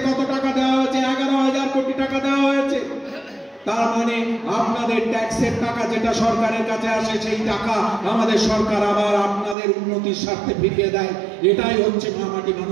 কত টাকা দেওয়া হয়েছে? 11,000 কোটি টাকা দেওয়া হয়েছে। তার মানে আপনাদের ট্যাক্সের টাকা যেটা সরকারের কাছে আসে, সেই টাকা আমাদের সরকার আবার আপনাদের উন্নতির স্বার্থে ফিরিয়ে দেয়। এটাই হচ্ছে মামাটি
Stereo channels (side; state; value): left; drops out; at 9.6 s